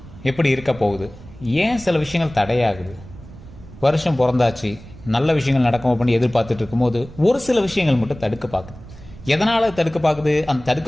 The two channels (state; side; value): noise; right; rumble, 18 dB below the sound